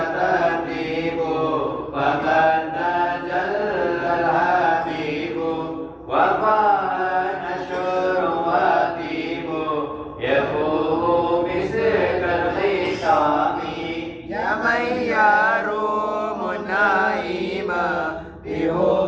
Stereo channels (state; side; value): identical; both; correlation 1.00